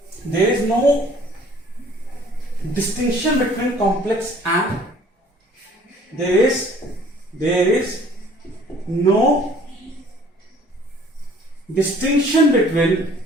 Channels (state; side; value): normal; both; correlation 0.54